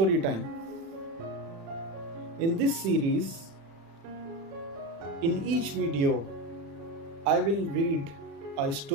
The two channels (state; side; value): late; left; 35 ms